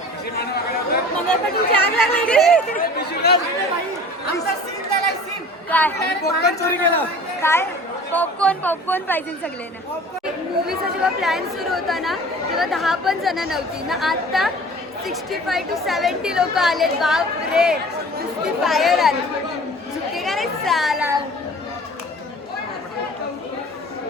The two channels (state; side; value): normal; both; correlation 0.43